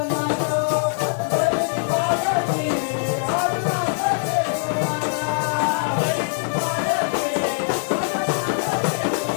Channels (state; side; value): silent; right; 64 dB below the other